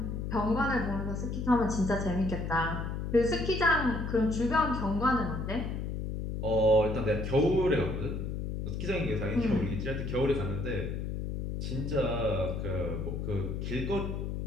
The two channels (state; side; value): noise; left; hum, 3 dB below the sound